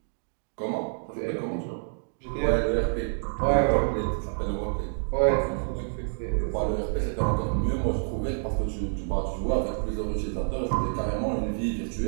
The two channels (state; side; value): silent; left; digital silence